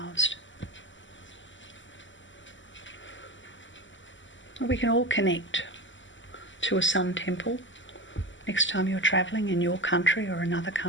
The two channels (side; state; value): right; late; 0.55 ms